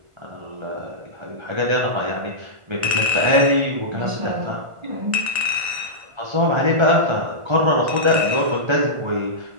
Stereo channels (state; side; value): late; left; 1.5 ms